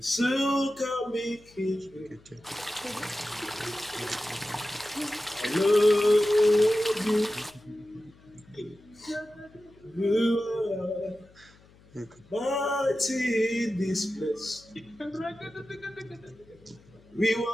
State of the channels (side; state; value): left; noise; hum, 27 dB below the sound